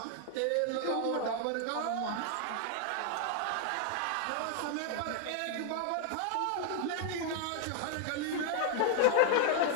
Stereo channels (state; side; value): different; both; correlation 0.00